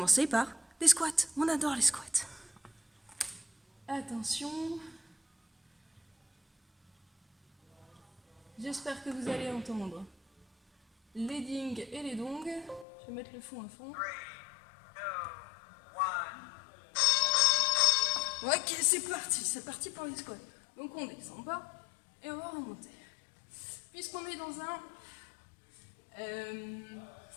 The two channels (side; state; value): right; drops out; at 12.9 s